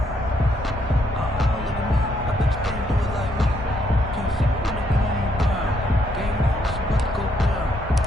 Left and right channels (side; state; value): both; normal; correlation 0.73